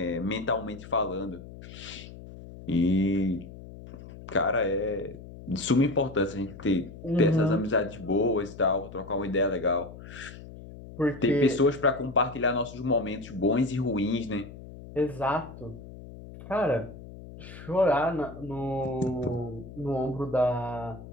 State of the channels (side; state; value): left; noise; hum, 15 dB below the sound